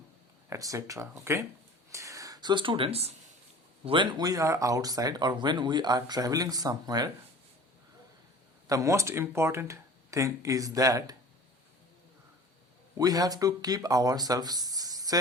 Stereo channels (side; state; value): both; normal; correlation 0.42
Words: etc. Okay? So students, when we are outside or when we are traveling somewhere, the most important thing is that we have to keep ourselves